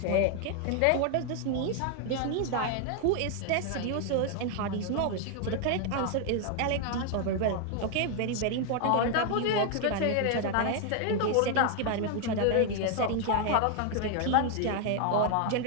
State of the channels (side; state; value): both; different; correlation 0.00